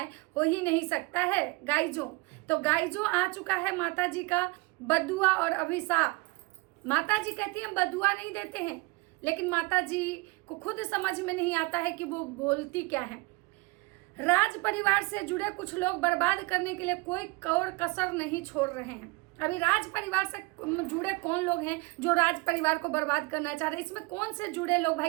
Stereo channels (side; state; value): left; quieter; 24.8 dB